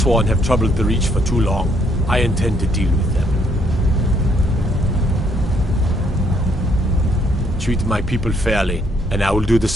have troubled the Reach for too long. I intend to deal with them. Treat my people fairly, and I will do the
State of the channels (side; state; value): both; normal; correlation 0.69